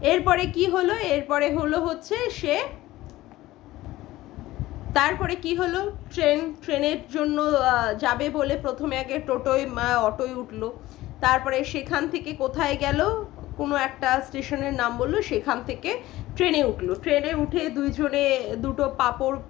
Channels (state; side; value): quieter; right; 16.9 dB